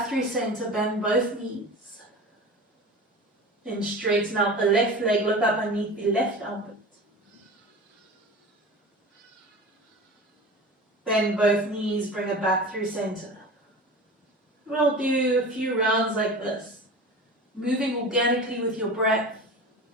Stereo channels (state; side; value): normal; both; correlation 0.34